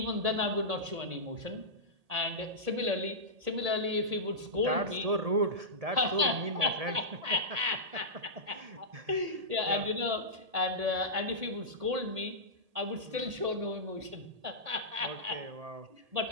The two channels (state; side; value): late; left; 1.8 ms